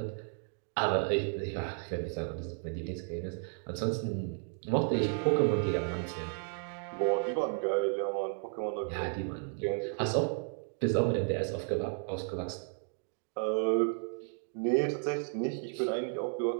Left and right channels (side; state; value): left; silent; 56 dB below the other